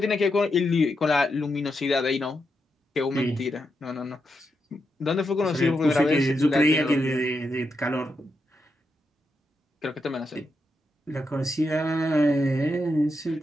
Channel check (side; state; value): both; normal; correlation 0.84